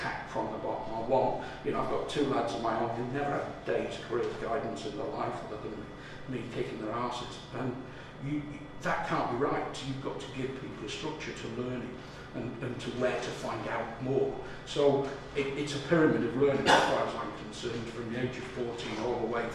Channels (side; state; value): both; identical; correlation 1.00